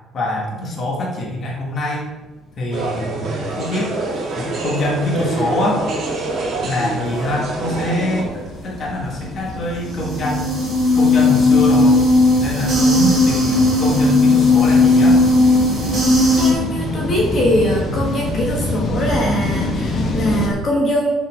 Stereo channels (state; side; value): normal; both; correlation 0.63